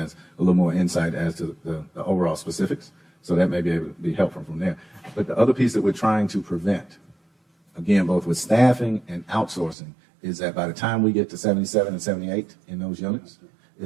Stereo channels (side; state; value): left; drops out; at 9.8 s